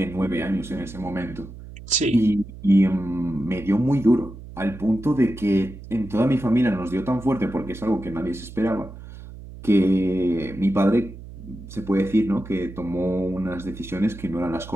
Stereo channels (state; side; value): noise; right; hum, 15 dB below the sound